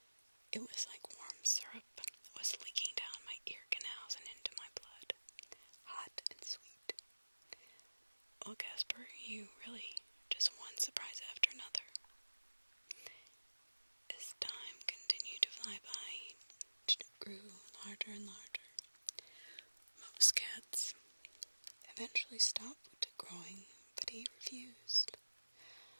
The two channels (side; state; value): both; inverted; correlation -1.00